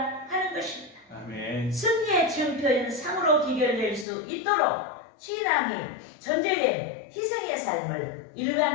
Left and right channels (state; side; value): drops out; right; at 4.0 s